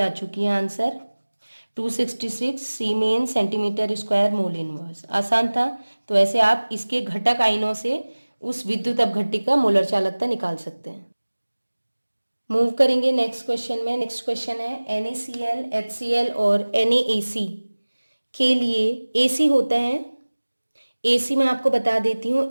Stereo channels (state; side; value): inverted; both; correlation -1.00